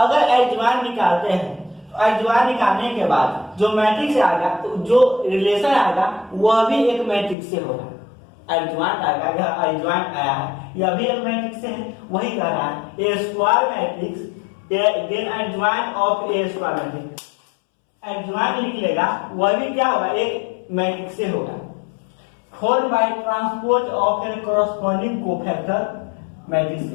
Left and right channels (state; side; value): drops out; right; at 7.4 s